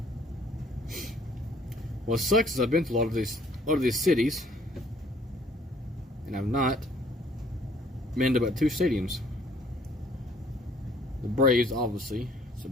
What sucks is I've been to a lot of these cities, and I've not been to about 2 stadiums. The Braves, obviously, so I've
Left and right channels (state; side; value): normal; both; correlation 0.60